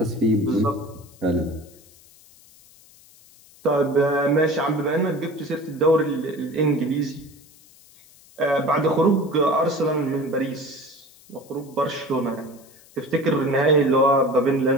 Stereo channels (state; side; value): noise; left; hiss, 26 dB below the sound